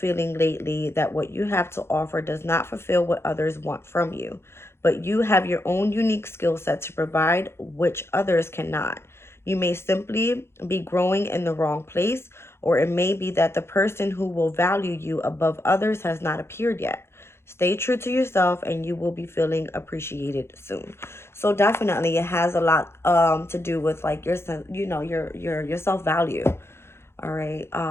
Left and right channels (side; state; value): right; late; 0.12 ms